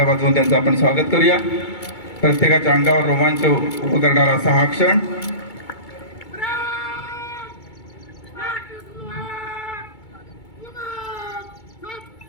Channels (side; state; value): right; late; 2.2 ms